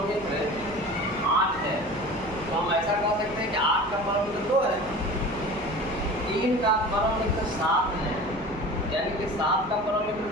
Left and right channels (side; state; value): right; noise; hum, 18 dB below the sound